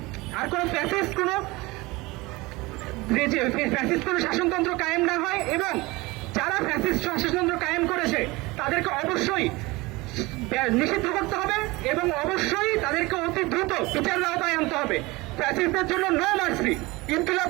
কোনো শাসনতন্ত্র কায়েম না হয়, এবং যারা ফ্যাসিস্ট শাসনতন্ত্র কায়েম করেছে তাদেরকে অবশ্যই নিষিদ্ধ করতে হবে এবং অবশ্যই তাদেরকে অতি দ্রুত বিচারের আওতায় আনতে হবে। ফ্যাসিস্টদের জন্য নো মার্সি। ইনকিলাব।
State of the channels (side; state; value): left; quieter; 22.3 dB